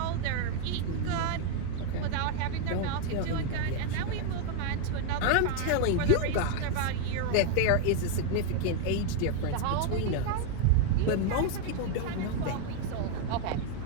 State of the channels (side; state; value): both; different; correlation 0.01